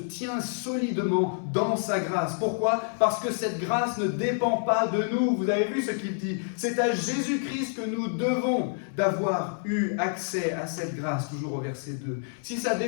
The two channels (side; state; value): right; silent; 57 dB below the other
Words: solidement dans sa grâce. Pourquoi ? Parce que cette grâce ne dépend pas de nous. Vous avez vu ce qu'il dit ? C'est à Jésus-Christ que nous devons d'avoir eu accès à cette grâce, toujours au verset 2. Si ça